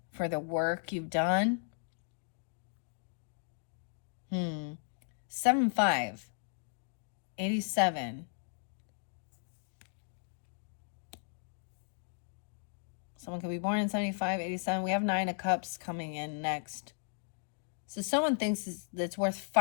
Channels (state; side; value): silent; right; digital silence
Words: for the work you've done. 7-5. 87. Someone could be born in 75, 87. We have 9 of Cups coming in next. So someone thinks that's worth